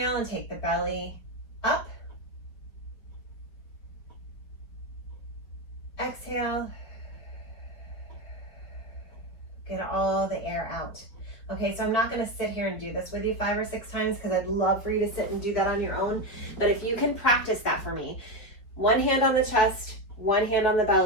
and take the belly up. Exhale. Get all the air out. Okay, so I'm not gonna sit here and do this with you 5 or 6 times, because I'd love for you to sit and do that on your own. But if you can practice that for me, one hand on the chest, one hand on the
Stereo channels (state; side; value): late; right; 4.8 ms